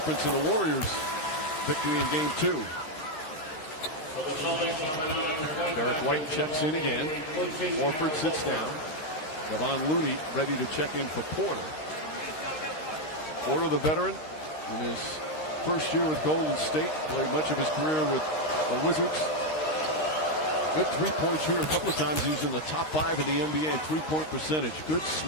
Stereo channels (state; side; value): late; right; 13 ms